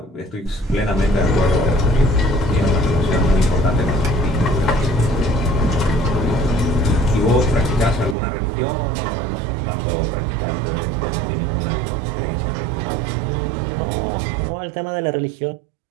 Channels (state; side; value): drops out; left; at 8.2 s